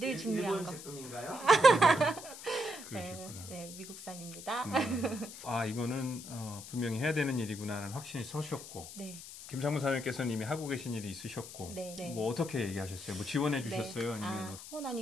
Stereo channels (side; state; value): left; noise; hiss, 13 dB below the sound